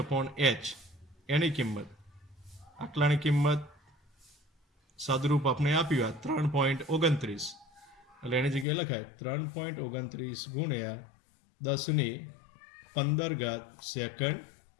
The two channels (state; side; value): drops out; right; at 8.7 s